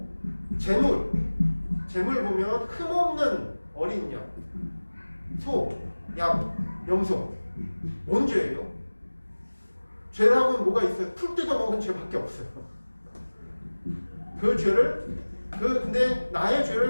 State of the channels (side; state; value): both; inverted; correlation -1.00